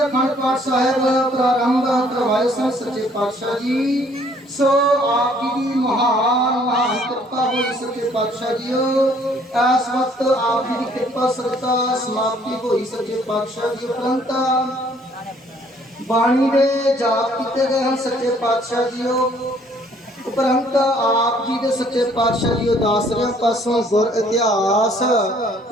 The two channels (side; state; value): both; normal; correlation 0.61